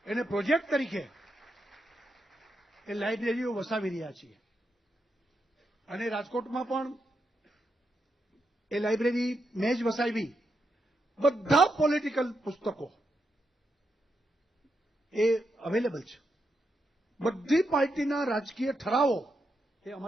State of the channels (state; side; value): normal; both; correlation 0.83